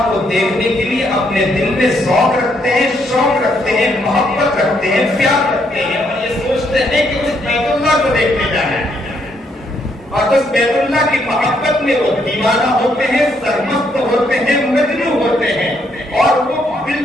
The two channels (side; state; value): both; normal; correlation 0.73